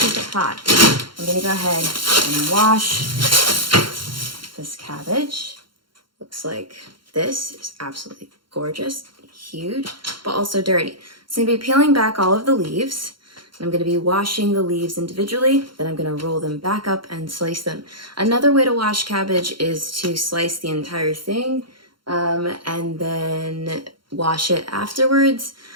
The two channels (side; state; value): left; late; 0.73 ms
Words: it hot. I'm gonna go ahead and wash this cabbage. Looks like this is absolutely gorgeous, huge, but also dirty. So I'm gonna be peeling back all of the leaves. I'm going to be washing the leaves individually, then I'm going to roll them back up and slice them. Another way to wash cabbage is to slice the entire thing and then wash it afterwards.